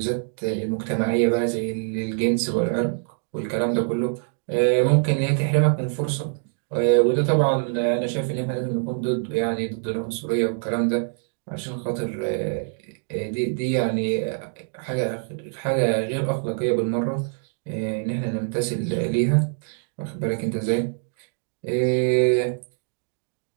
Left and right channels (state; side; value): silent; left; digital silence